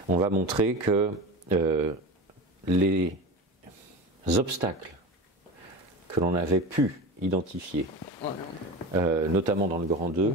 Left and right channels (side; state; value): both; normal; correlation 0.28